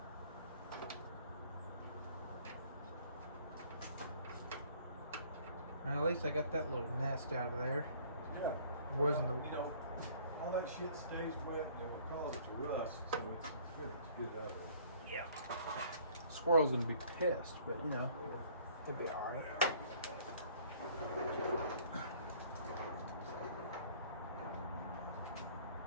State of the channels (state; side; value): inverted; both; correlation -0.56